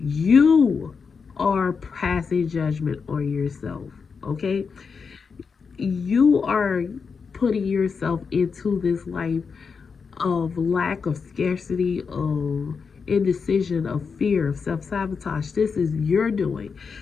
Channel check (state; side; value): quieter; right; 5.5 dB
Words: you are passing judgment on yourself, okay? You are putting yourself into this life of lack, of scarcity, of indecision, of fear, of self sabotage. This is your doing,